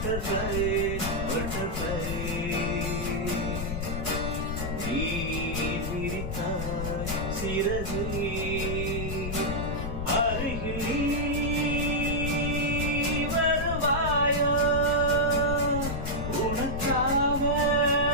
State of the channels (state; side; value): noise; left; rumble, 4 dB below the sound